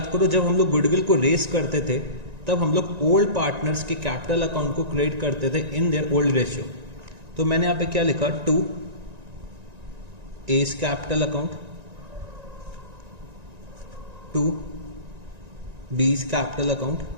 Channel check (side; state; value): left; late; 1.9 ms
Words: करो जब हम लोग गुडविल को रेस करते थे तब हम लोग ओल्ड पार्टनर्स के कैपिटल अकाउंट को क्रिएट करते थे इन देयर ओल्ड रेशियो। तो मैंने यहाँ पे क्या लिखा, 2 A's capital account, 2 B's capital account,